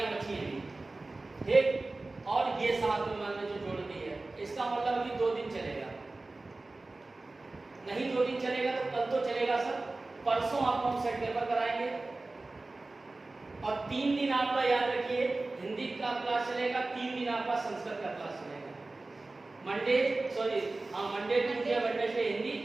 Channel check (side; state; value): left; quieter; 3.2 dB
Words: बची हैं। ठीक, और ये 7 में मैंने जो जोड़ दी है, इसका मतलब कि 2 दिन चलेगा, नहीं 2 दिन चलेगा तो कल तो चलेगा सर, परसों आपको हम सेट पेपर कराएंगे। और 3 दिन आपका याद रखिए हिंदी का क्लास चलेगा, 3 दिन आपका संस्कृत का क्लास चलेगा। Monday Tuesday Wednesday Hindi,